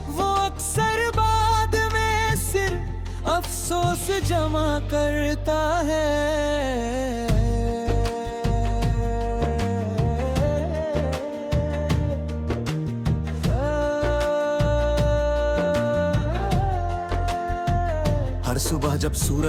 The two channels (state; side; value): identical; both; correlation 1.00